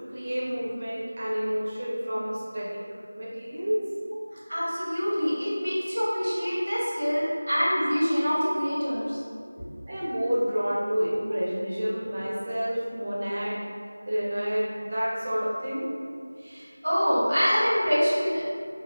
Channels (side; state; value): both; inverted; correlation -0.99